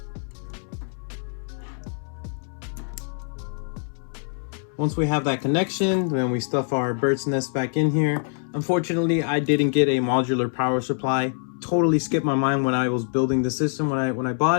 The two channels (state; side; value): silent; right; 62 dB below the other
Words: Once we have that connection, then we stuff our bird's nest back in here. Unfortunately, I didn't get a modular power supply. Totally skipped my mind when I was building the system when I